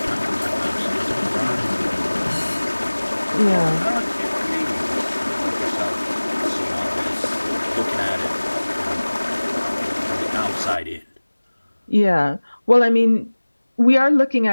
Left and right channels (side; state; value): both; inverted; correlation -1.00